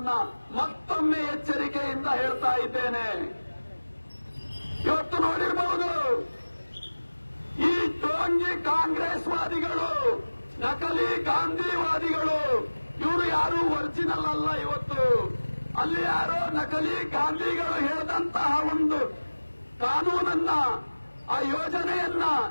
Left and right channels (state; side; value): inverted; both; correlation -1.00